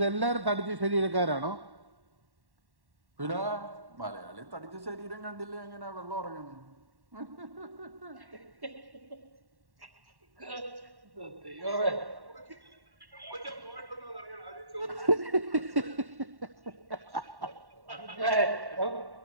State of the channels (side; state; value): left; late; 1.1 ms